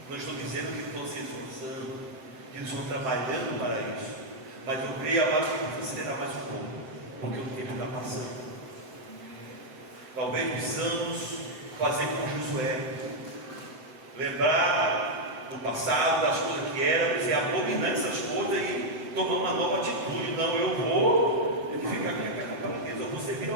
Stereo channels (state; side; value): late; left; 7.8 ms